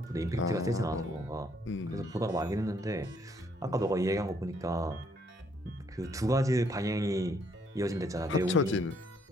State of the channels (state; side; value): normal; both; correlation 0.68